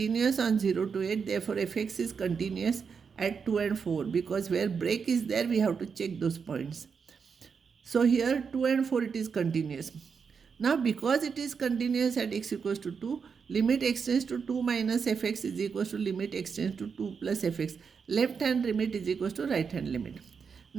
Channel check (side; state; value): left; quieter; 6.0 dB